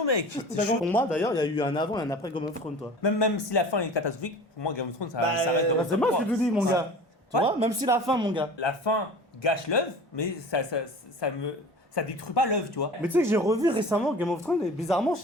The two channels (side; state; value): both; normal; correlation 0.39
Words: mec. T'as compris. Pour moi, d'ailleurs, il y a eu un avant et un après Game of Thrones, toi. Même si la fin est catastrophique, pour moi, Game of Thrones, ça Bah, reste dans Bah, c'est moi qui te dis, mon Ouais. gars. Tu Ouais. vois, même si la fin, mon gars. La fin gâche l'œuvre, mais ça détruit pas l'œuvre, tu vois. Mais tu sais que j'ai revu récemment Game of Thrones et bizarrement, je